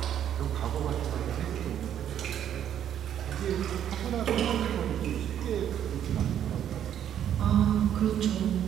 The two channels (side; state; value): left; quieter; 10.0 dB